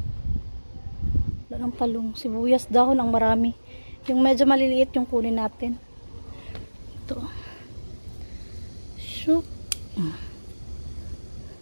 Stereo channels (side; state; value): both; inverted; correlation -1.00